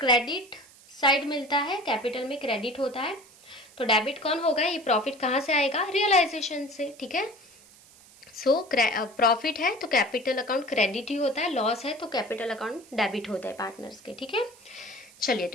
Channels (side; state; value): right; noise; hiss, 24 dB below the sound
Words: साइड मिलता है, कैपिटल में क्रेडिट होता है। तो डेबिट कौन होगा, ये प्रॉफिट कहाँ से आएगा, रियलाइजेशन से। ठीक है, सो प्रॉफिट है तो कैपिटल अकाउंट क्रेडिट ही होता है, लॉस है तो कैपिटल अकाउंट डेबिट होता है पार्टनर्स के। ठीक है, चलिए